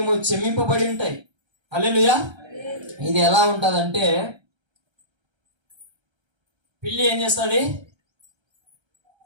క్షమింపబడి ఉంటాయి. హల్లెలూయా. ఇది ఎలా ఉంటదంటే, పిల్లి ఏం చేస్తుంది?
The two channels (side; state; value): left; late; 1.3 ms